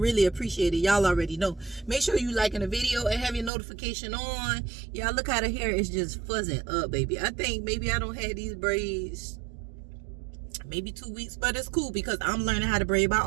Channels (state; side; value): drops out; left; at 3.5 s